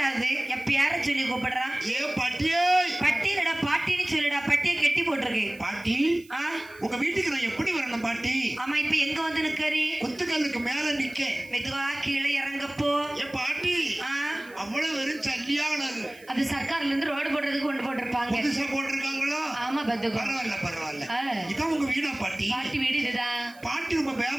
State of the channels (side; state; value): right; noise; hiss, 25 dB below the sound